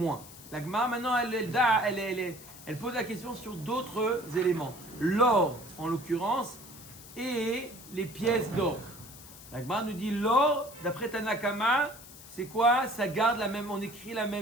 La Gemara maintenant elle pose la question sur d'autres éléments. L'or en l'occurrence et les pièces d'or. La Gemara nous dit l'or, d'après Tanakama, c'est quoi? Ça garde la même, on écrit la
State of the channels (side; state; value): left; noise; hiss, 17 dB below the sound